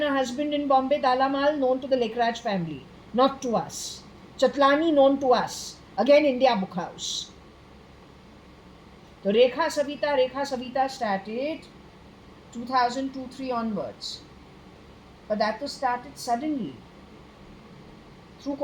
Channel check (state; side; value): identical; both; correlation 1.00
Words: her husband in Bombay, Dalamal, known to the Lekraj family, not to us. Chatlani, known to us, again India Book House. The Rekha Savita started 2002-3 onwards. But that was started suddenly through